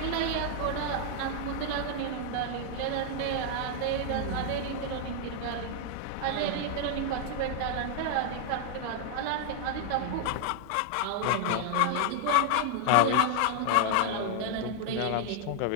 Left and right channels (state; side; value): different; both; correlation 0.00